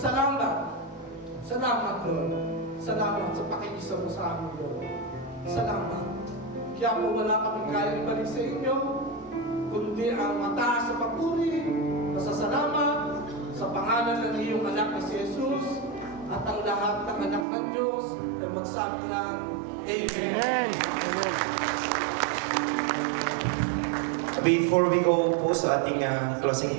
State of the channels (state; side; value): drops out; left; at 17.4 s